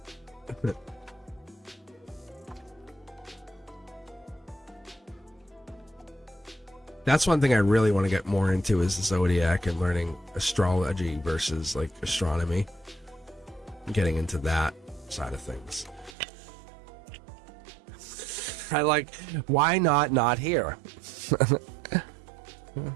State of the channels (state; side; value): drops out; left; at 16.2 s